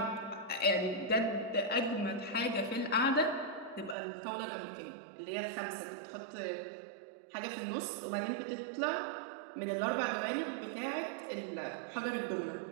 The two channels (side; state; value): left; drops out; at 4.0 s